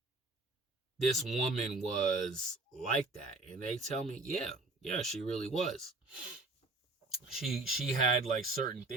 this woman was like that? And they tell me, yeah, she really was. She had like certain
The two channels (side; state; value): left; quieter; 3.2 dB